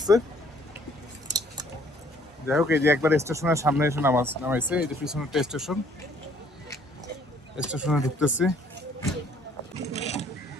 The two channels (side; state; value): both; normal; correlation 0.61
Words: যাই হোক, এই যে একবার স্টেশনের সামনে এসে নামাইছে। এই যে পিছনেরটা স্টেশনে ঢুকতেছি।